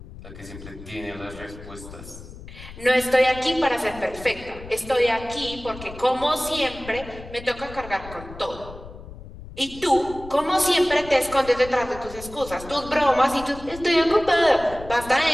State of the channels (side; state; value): left; noise; rumble, 15 dB below the sound